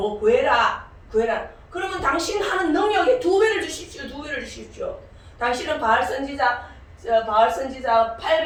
구해라. 그러면 당신 하는 능력에 2배를 주십시오. 당신은 바알 선지자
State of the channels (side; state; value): both; identical; correlation 1.00